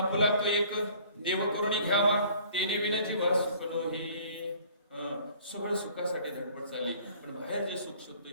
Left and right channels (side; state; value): both; inverted; correlation -0.54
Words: तो एक देव करुणी घ्यावा, तेने विना जीवा सुख नोही. सगळं सुखासाठी धडपड चालली, पण बाहेर जे सुख शोधतोय